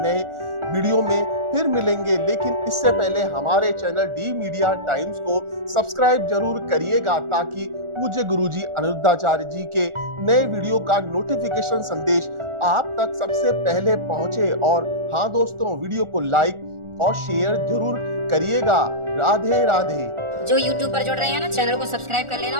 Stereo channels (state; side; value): late; left; 1.4 ms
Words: वीडियो में फिर मिलेंगे, लेकिन इससे पहले हमारे चैनल डी मीडिया टाइम्स को सब्सक्राइब जरूर करिएगा, ताकि पूज्य गुरुजी अनिरुद्धाचार्य जी के नए वीडियो का नोटिफिकेशन संदेश आप तक सबसे पहले पहुंचे। और हाँ दोस्तों, वीडियो को लाइक और शेयर जरूर करिएगा। राधे राधे। जो YouTube पर जुड़ रहे हैं ना, चैनल को सब्सक्राइब कर लेना